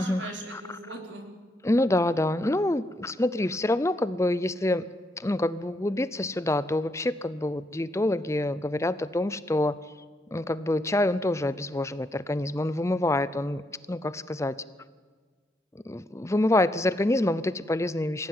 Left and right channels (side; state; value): both; normal; correlation 0.77